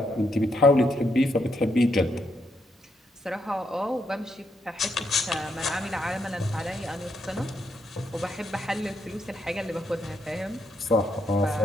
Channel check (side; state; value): both; normal; correlation 0.78